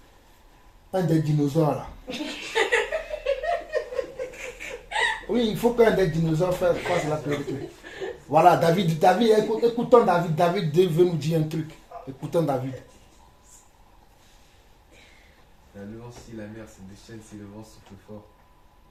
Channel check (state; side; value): identical; both; correlation 1.00